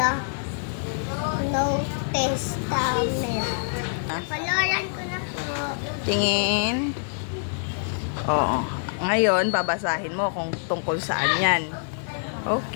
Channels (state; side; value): silent; right; digital silence